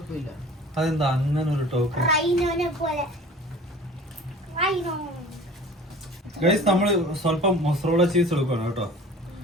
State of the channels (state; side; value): normal; both; correlation 0.44